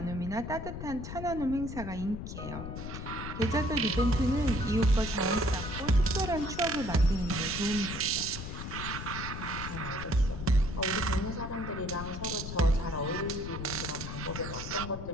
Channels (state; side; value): noise; left; rumble, 7 dB below the sound